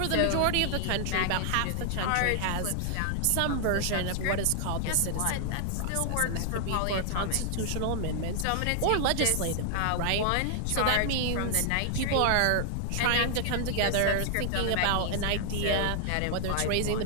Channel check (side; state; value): both; different; correlation 0.00